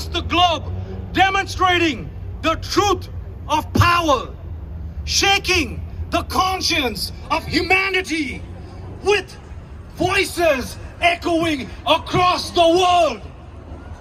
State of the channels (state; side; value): identical; both; correlation 1.00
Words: the globe, demonstrating the truth of power, shaking the conscience of humanity with voices echoing across the world.